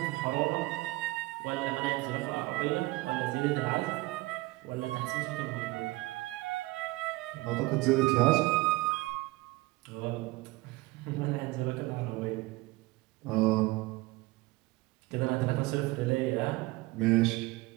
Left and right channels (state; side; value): quieter; left; 20.9 dB